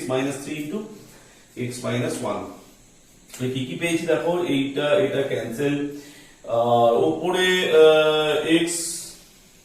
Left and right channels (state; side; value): identical; both; correlation 1.00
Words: minus 3 into x minus 1। কি কি পেয়েছি দেখো, এইটা এটা ক্যান্সেল, আর উপরে x